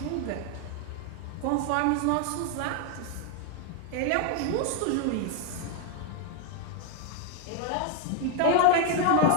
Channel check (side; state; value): both; different; correlation 0.01